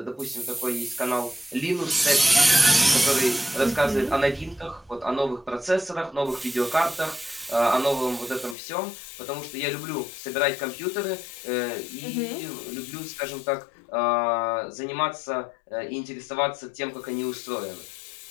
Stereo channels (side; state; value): right; drops out; at 8.6 s